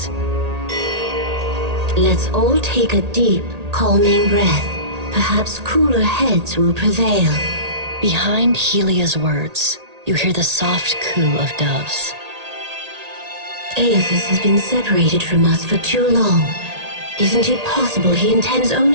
Let's all take a deep, calming breath. Perhaps cooler heads will prevail. Behind Helia's words, you hear the soft coo of doves. Aethys has been separated from us for too long. Isn't it possible he intends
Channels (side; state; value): left; late; 1.8 ms